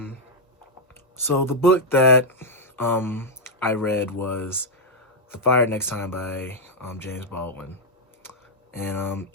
So the book that I read was The Fire Next Time by James Baldwin. And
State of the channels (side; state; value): both; normal; correlation -0.01